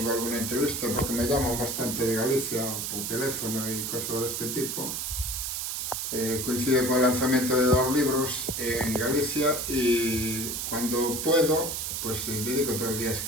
alguna entrevista, porque me llaman bastante de Galicia por teléfono y cosas de este tipo, coincide con el lanzamiento de 2 libros en Galicia y cuando puedo, pues dedico todo el día a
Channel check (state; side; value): noise; right; hiss, 3 dB below the sound